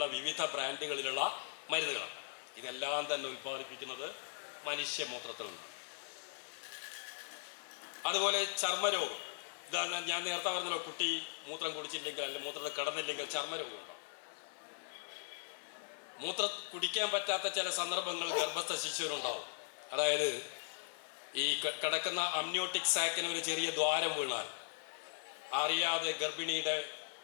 വിവിധ ബ്രാൻഡുകളിലുള്ള മരുന്നുകളാണ്. ഇതെല്ലാം തന്നെ ഉൽപ്പാദിപ്പിക്കുന്നത് മനുഷ്യമൂത്രത്തിൽ നിന്നാണ്. അതുപോലെ ചർമ്മരോഗം, ഇതാ ഞാൻ നേരത്തെ പറഞ്ഞല്ലോ, കുട്ടി മൂത്രം കുടിച്ചില്ലെങ്കിൽ അല്ലെങ്കിൽ മൂത്രത്തിൽ കിടന്നില്ലെങ്കിൽ ചർമ്മരോഗം ഉണ്ടാവും. മൂത്രം കുടിക്കാൻ പറ്റാത്ത ചില സന്ദർഭങ്ങൾ ഗർഭസ്ഥ ശിശുവിനുണ്ടാവും. അതായത് ഈ കിടക്കുന്ന അമ്നിയോട്ടിക് സാക്കിന് ഒരു ചെറിയ ദ്വാരം വീണാൽ അറിയാതെ ഗർഭിണിയുടെ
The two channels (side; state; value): right; silent; digital silence